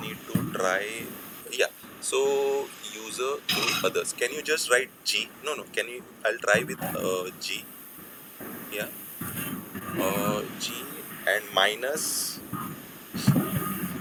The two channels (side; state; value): both; identical; correlation 1.00